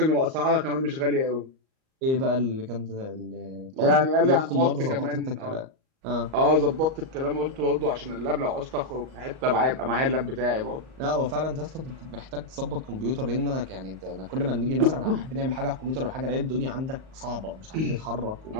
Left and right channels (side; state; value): left; late; 38 ms